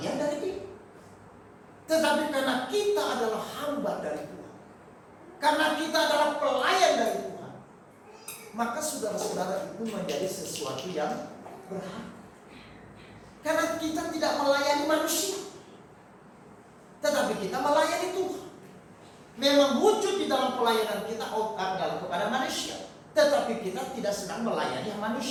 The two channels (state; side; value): identical; both; correlation 1.00